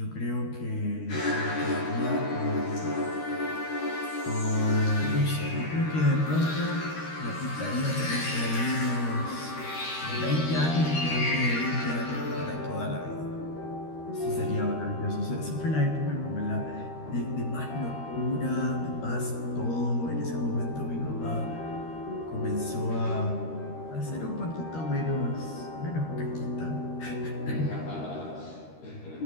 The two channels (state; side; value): late; right; 13 ms